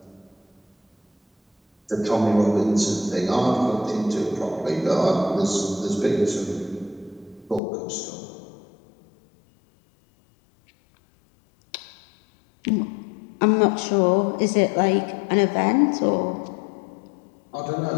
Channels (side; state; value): right; drops out; at 7.6 s